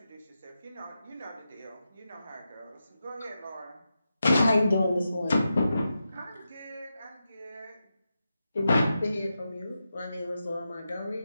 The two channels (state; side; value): inverted; both; correlation -0.89